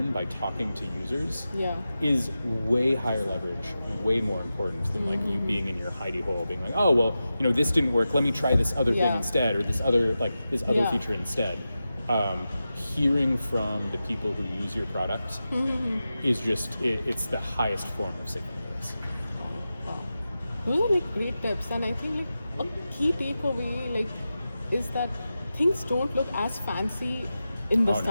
by talking to users is way higher leverage, way more important than like you being in your hidey hole, being like, oh well, you know, this didn't work, let me try this other thing instead, or this other feature instead. Hearing from the people who use your product is just it's the highest form of signal. Those are like great tips, and I think like a key takeaway like is that things don't look as fancy in the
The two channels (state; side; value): inverted; both; correlation -0.92